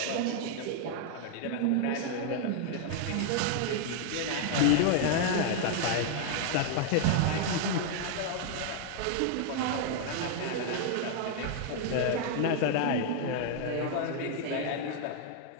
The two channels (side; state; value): both; different; correlation 0.00